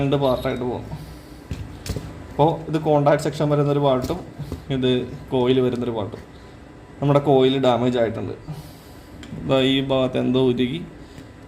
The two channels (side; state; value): both; identical; correlation 1.00